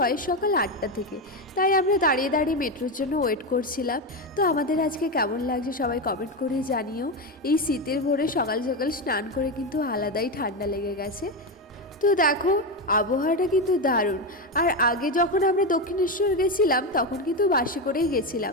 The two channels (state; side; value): normal; both; correlation 0.13